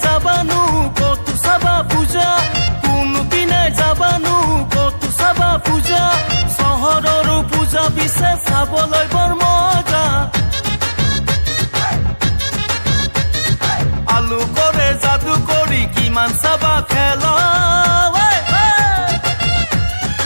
যাবানো কত চাবা পূজা কোনপিনে যাবানো কত চাবা পূজা চহৰৰো পূজা পিছে চাবলৈ বৰ মজা আলু কৰে যাদু কৰি কিমান চাবা খেলা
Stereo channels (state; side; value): inverted; both; correlation -1.00